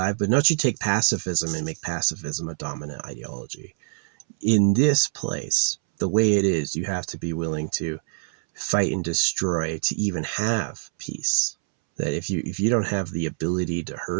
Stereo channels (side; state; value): left; silent; 62 dB below the other